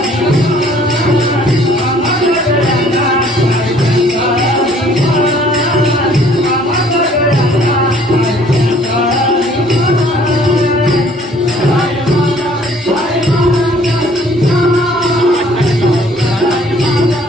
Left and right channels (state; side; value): normal; both; correlation 0.58